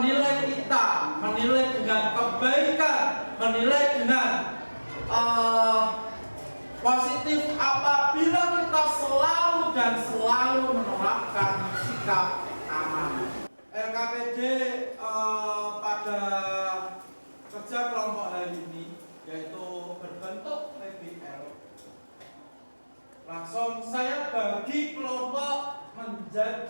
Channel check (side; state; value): both; inverted; correlation -1.00